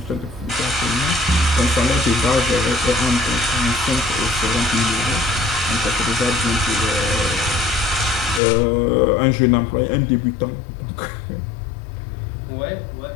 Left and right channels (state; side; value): drops out; right; at 8.4 s